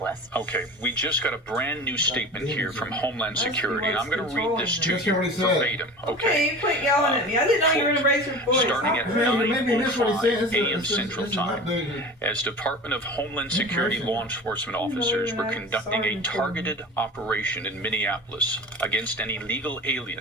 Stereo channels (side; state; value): both; normal; correlation 0.36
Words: Okay, we just got a brand new statement here from Homeland Security, and I'm going to read this to you verbatim. Okay, you quit yelling at me. I didn't know you were going to raise your voice. Starting at 9:05 a.m. Central Time, as Department of Homeland Security law enforcement officers were conducting a targeted operation in Minneapolis against an illegal alien